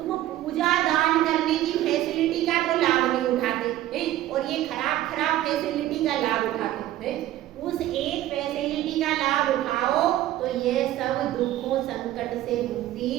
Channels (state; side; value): quieter; left; 13.9 dB